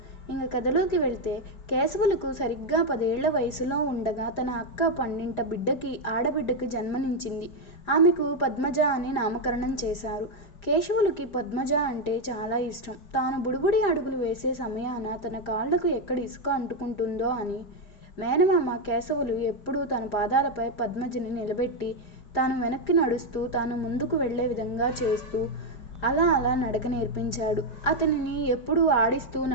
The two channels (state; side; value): late; right; 5.0 ms